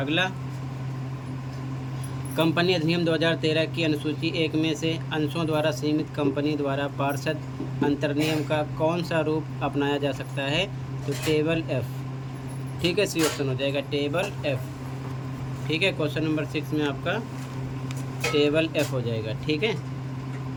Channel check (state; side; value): identical; both; correlation 1.00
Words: कंपनी अधिनियम 2013 की अनुसूची 1 में से अंशों द्वारा सीमित कंपनी द्वारा पार्षद अंतर्नियम का कौन सा रूप अपनाया जा सकता है? तो टेबल एफ। ठीक है, सी ऑप्शन हो जाएगा, टेबल एफ। ठीक है, क्वेश्चन नंबर 6 में आपका टेबल एफ हो जाएगा। ठीक है,